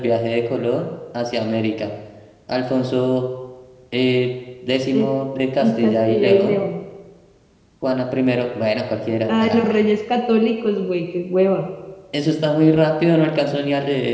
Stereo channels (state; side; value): identical; both; correlation 1.00